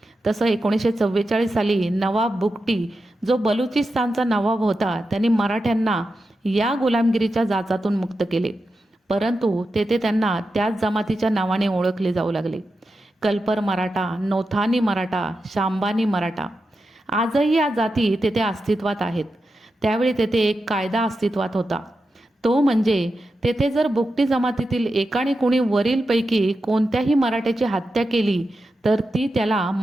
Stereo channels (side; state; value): both; normal; correlation 0.89